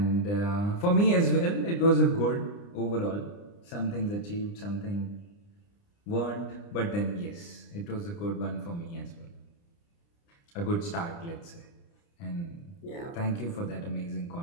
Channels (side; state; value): right; late; 29 ms